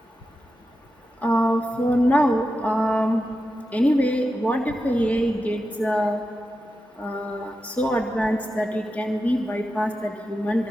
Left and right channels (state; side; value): normal; both; correlation 0.90